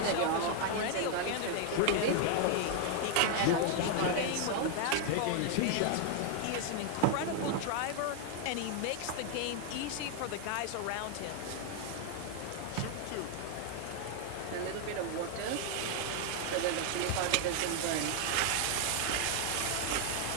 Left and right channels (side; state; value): both; different; correlation 0.00